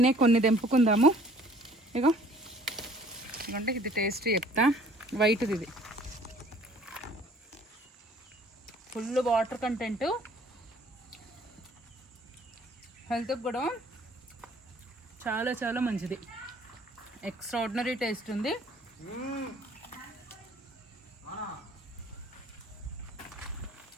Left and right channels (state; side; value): normal; both; correlation 0.55